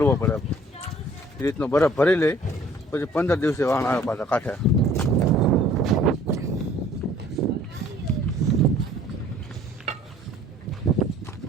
પડે. એ રીતનો બરફ ભરી લે પછી 15 દિવસે વાણ આવે પાછા કાંઠે.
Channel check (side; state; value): both; normal; correlation 0.55